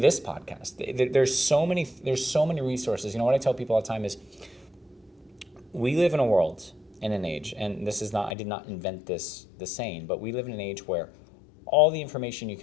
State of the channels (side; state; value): right; drops out; at 8.3 s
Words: podcast. There's so many resources. You know what I tell people all the time is, we live in a world, in an age, and this is not, I did not invent this, the saying, but we live in an age where all the information you